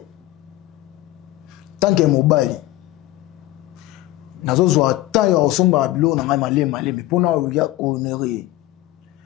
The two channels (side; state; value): right; quieter; 16.5 dB